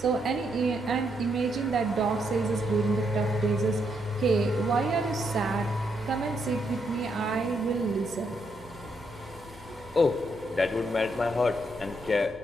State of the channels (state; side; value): noise; right; hum, 23 dB below the sound